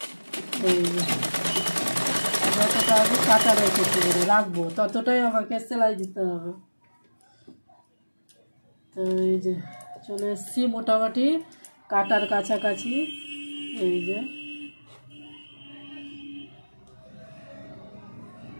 এই যে যতটা আমি কাটা রেখেছি রাখবো, ততটাই আমাকে সেলাই দিতে হবে। তো এই যে চলে এসছি মোটামুটি কাটার কাছাকাছি। এই যে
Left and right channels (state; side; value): inverted; both; correlation -1.00